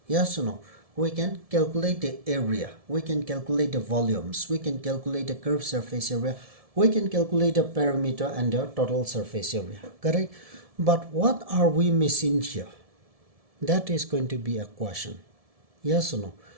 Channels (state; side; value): late; left; 1.7 ms